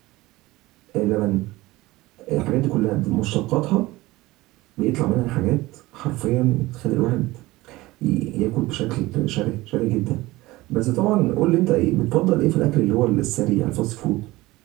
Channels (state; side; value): quieter; left; 19.4 dB